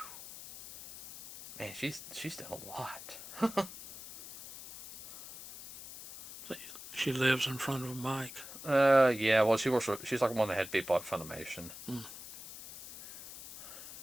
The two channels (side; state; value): left; noise; hiss, 13 dB below the sound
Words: man, she's done a lot. She lives in front of a mic. Yeah, well, she's like one of the head people at Funimation.